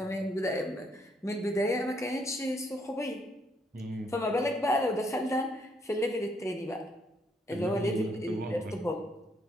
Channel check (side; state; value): both; normal; correlation 0.72